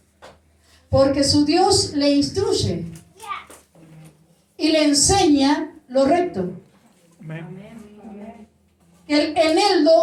porque su Dios le instruye y le enseña lo recto. El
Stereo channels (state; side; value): identical; both; correlation 1.00